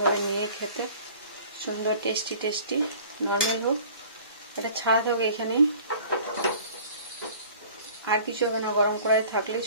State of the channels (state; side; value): inverted; both; correlation -0.48